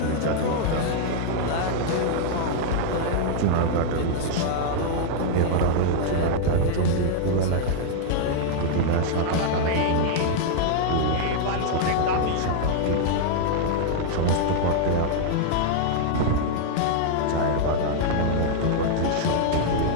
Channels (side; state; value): both; different; correlation -0.01